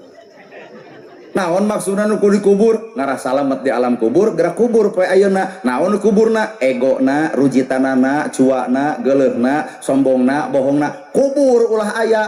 Naon maksudna nu dikubur ngarasa salamet di alam kubur gerak kubur poe ayeuna. Naon kuburna egona, rujitanana, cuana, geuleuhna, sombongna, bohongna kubur ulah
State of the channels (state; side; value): identical; both; correlation 1.00